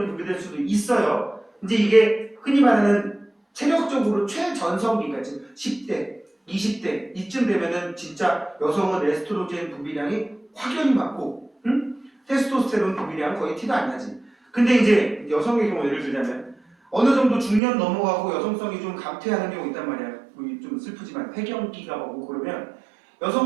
분비될 수도 있어요. 이제 이게 흔히 말하는 체력적으로 최전성기가 지금 10대, 20대 이쯤 되면은 진짜 여성은 에스트로겐 분비량이 확연히 많고, 테스토스테론 분비량 거의 티도 안 나지. 근데 이제 여성의 경우 예를 들자면 어느 정도 중년 넘어가고 여성성이 좀 감퇴하는 경우 있단 말이야. 좀 슬프지만 폐경기가 오고 그러면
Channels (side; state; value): left; drops out; at 17.6 s